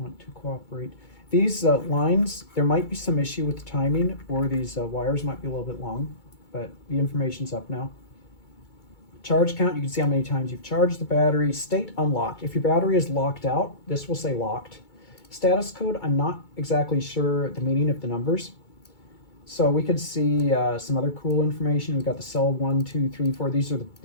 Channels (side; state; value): right; late; 2.3 ms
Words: to cooperate. These lines, there might be some issue with the timing, or these wires might be a little bit long, but the information's up now. charge count, you can see how many times you've charged the battery. State unlocked. If your battery is locked out, this will say locked. Status code, I'm not exactly sure the meaning of the numbers. So we could see some other cool information. We've got the cell 1, 2, 3, 4. These are